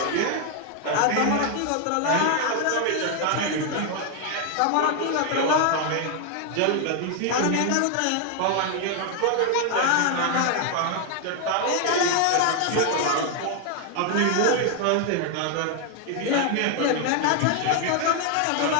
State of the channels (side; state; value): both; different; correlation 0.01